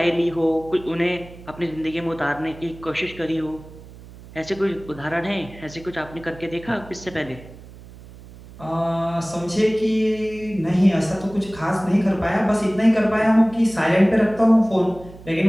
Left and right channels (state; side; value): noise; right; hum, 18 dB below the sound